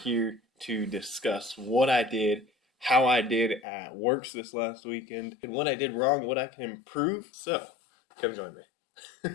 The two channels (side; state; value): right; drops out; at 3.6 s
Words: to discuss what I did, how I did at WORCS this last weekend, and what I did wrong, what I can improve. So, come join me.